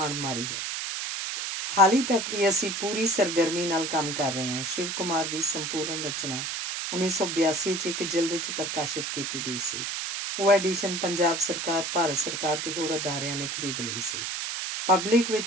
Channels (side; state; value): right; noise; hiss, 3 dB below the sound